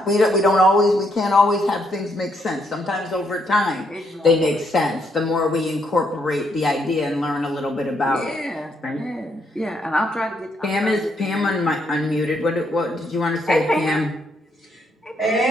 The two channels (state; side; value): normal; both; correlation 0.75